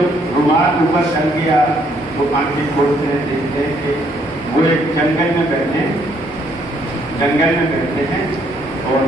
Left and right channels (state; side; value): normal; both; correlation 0.68